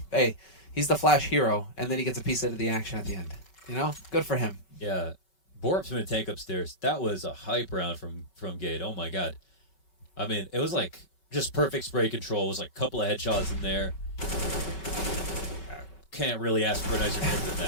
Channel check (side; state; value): right; late; 5.3 ms